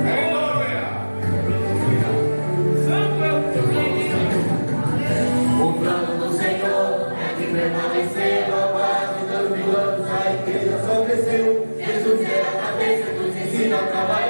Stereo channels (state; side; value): inverted; both; correlation -1.00